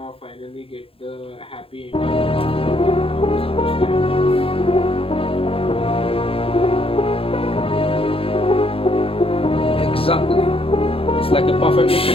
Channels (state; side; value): late; right; 0.27 ms